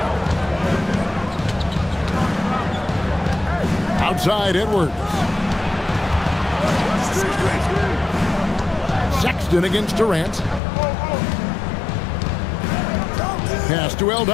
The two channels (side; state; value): right; drops out; at 10.6 s